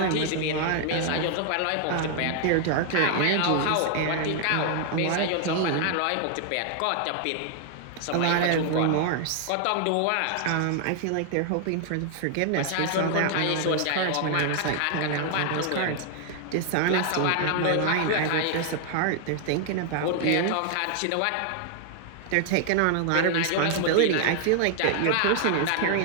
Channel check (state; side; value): different; both; correlation 0.00